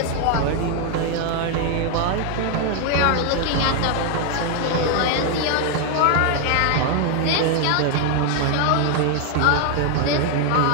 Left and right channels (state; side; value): different; both; correlation 0.00